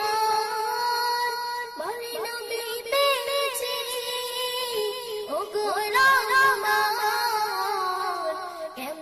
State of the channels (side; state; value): both; identical; correlation 1.00